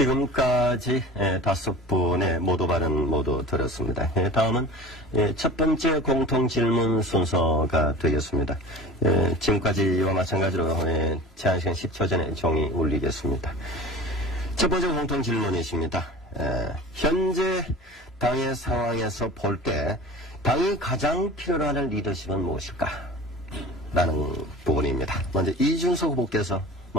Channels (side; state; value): both; normal; correlation 0.37